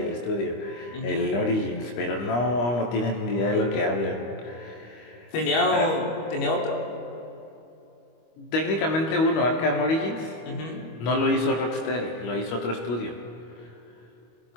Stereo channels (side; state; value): right; late; 25 ms